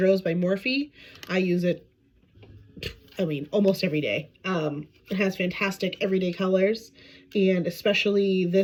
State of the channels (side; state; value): both; identical; correlation 1.00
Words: by Morphe. I use it, I mean, almost every day. It has fantastic everyday colors, and especially